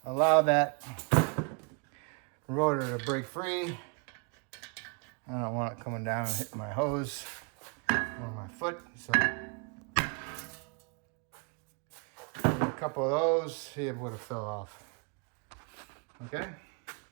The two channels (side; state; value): left; quieter; 34.8 dB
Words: allow that rotor to break free. I don't want it coming down and hitting my hose or my foot, so a couple of those, see if it would have fell off. Okay,